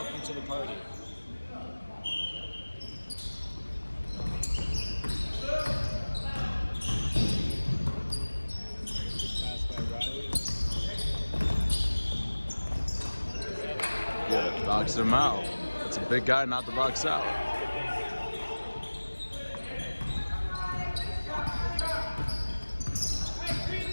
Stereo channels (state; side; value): inverted; both; correlation -1.00